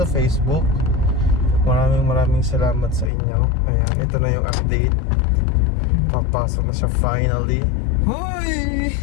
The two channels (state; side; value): drops out; right; at 3.1 s